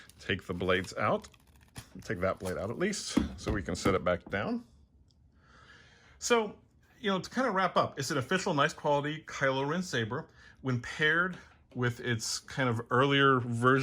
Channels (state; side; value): identical; both; correlation 1.00